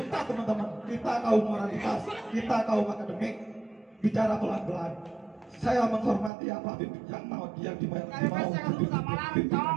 teman-teman. Kita kaum moralitas, kita kaum akademik bicara pelan-pelan. Saya menghormati apa yang mau pimpinan.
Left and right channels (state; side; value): drops out; left; at 6.3 s